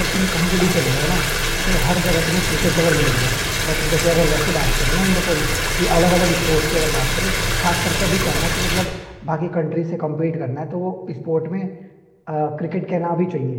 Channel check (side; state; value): both; identical; correlation 1.00